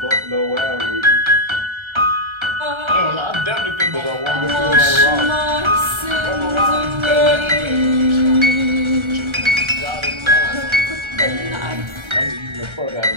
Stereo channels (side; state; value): left; late; 1.3 ms